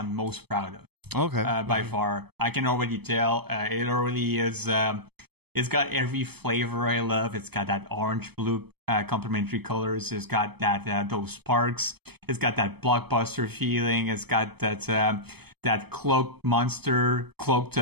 most proud of. Okay. By far. I can already tell. It already is. It's got every flavor I love. It's got that orange-blue complementary colors. It's got that those sparks. It's got that blockbuster feeling. It's got that cloaked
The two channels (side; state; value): left; late; 0.97 ms